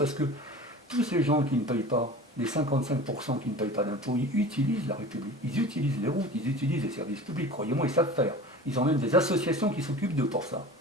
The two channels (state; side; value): normal; both; correlation 0.37